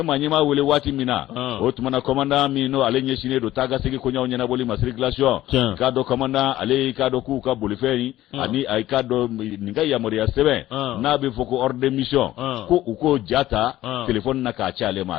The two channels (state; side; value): quieter; right; 14.7 dB